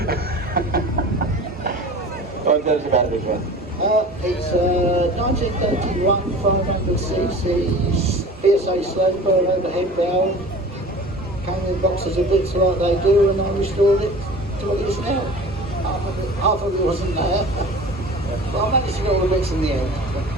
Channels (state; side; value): normal; both; correlation 0.40